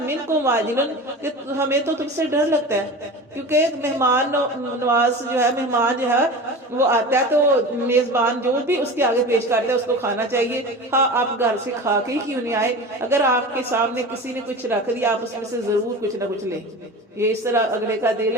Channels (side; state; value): both; normal; correlation 0.32